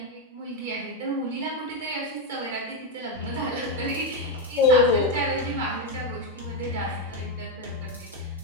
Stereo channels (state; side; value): normal; both; correlation 0.06